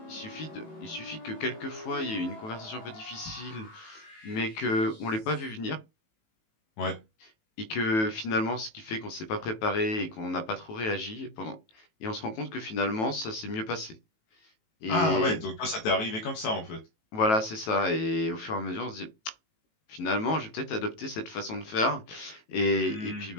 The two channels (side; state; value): right; late; 18 ms